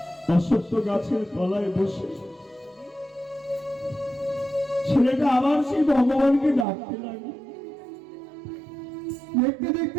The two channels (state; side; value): drops out; left; at 6.7 s